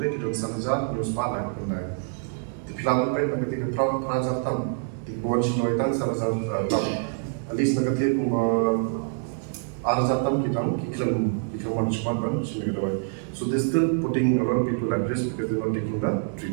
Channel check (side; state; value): left; silent; digital silence